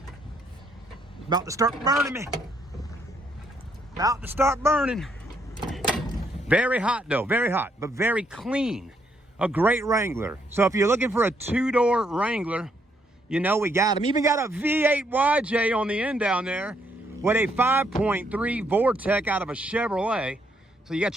It's about to start burning me. About to start burning. Very hot, though. Very hot, but very clean. A great Wrangler. So if you're looking for a two-door Wrangler, we got them. Even got a V8 YJ on the end down there with a 5.3 Vortec out of a Chevrolet. So you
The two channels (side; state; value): both; normal; correlation 0.73